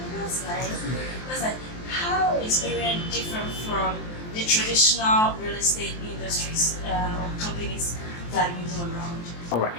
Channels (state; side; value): late; right; 23 ms